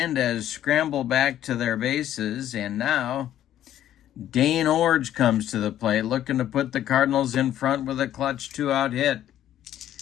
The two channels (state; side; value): quieter; right; 11.8 dB